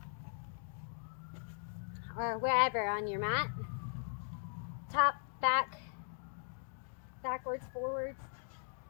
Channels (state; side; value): silent; right; digital silence